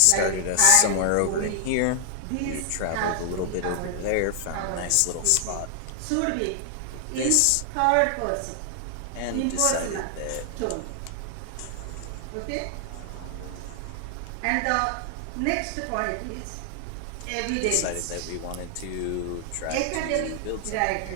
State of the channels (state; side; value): different; both; correlation 0.00